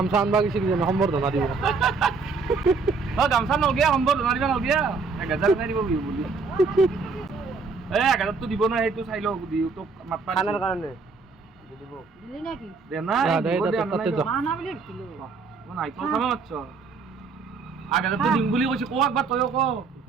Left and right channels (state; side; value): quieter; left; 4.5 dB